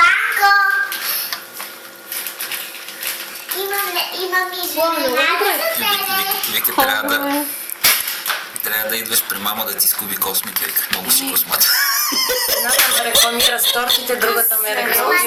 Имам изненада за тебе. Вики, трябва да идваш при мама да ти скуби космите. Много си космата. Едната ме рекламира с тортите, другата ме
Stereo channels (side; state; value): both; identical; correlation 1.00